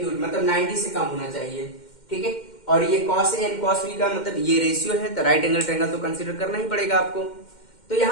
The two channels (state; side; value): late; right; 2.1 ms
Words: मतलब 90 से कम होना चाहिए, ठीक है। और ये cos A and cos B का मतलब ये रेशियो है, तो राइट एंगल ट्रायंगल तो कंसीडर करना ही पड़ेगा आपको। तो